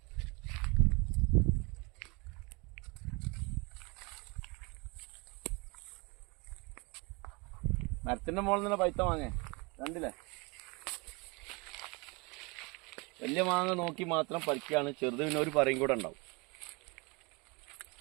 മരത്തിന്റെ മുകളിൽ നിന്ന് പൈത്ത മാങ്ങ കണ്ടില്ലേ? വലിയ മാങ്ങ നോക്കി മാത്രം പറിക്കുകയാണ്. ചെറുത് പിന്നെ ഒരു പറയും കൂടെ ഉണ്ടാവും.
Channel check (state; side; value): quieter; left; 28.4 dB